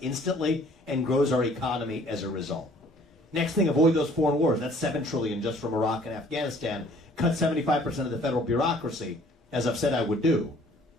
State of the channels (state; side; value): normal; both; correlation 0.56